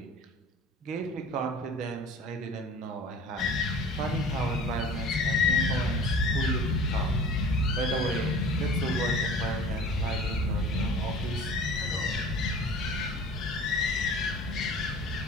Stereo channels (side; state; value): both; normal; correlation 0.43